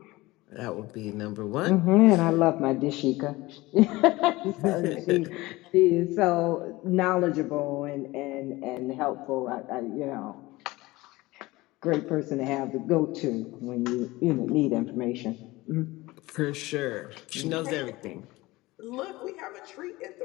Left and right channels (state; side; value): quieter; right; 20.2 dB